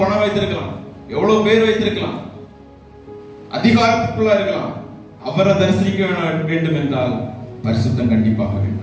பணம் வைத்திருக்கலாம், எவ்வளவு பேர் வைத்திருக்கலாம், அதிகாரத்துக்குள்ள இருக்கலாம், அவரை தரிசிக்க வேண்டும் என்றால் பரிசுத்தம் கண்டிப்பாக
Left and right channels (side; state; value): both; identical; correlation 1.00